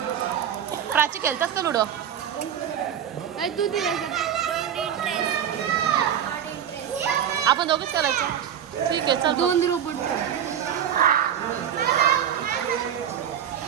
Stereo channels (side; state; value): left; quieter; 9.4 dB